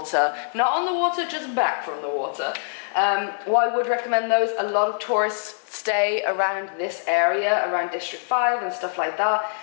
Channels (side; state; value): right; silent; digital silence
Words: not on the water, just back from the water. Well, I would recommend those. A lot of tourists stay around this area, around District 5 and stuff like that.